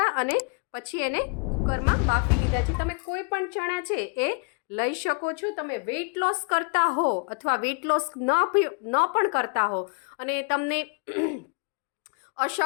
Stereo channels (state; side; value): quieter; right; 35.0 dB